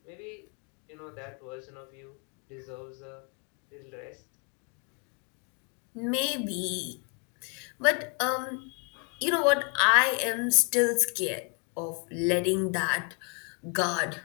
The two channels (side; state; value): right; quieter; 37.1 dB